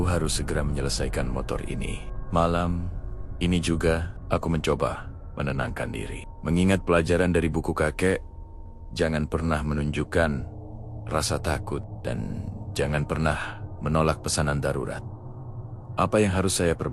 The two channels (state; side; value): identical; both; correlation 1.00